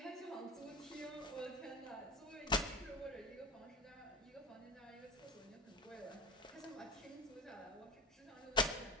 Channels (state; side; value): normal; both; correlation 0.26